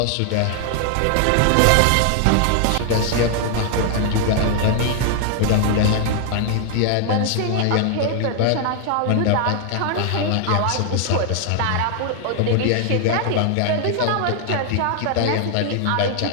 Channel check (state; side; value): different; both; correlation 0.00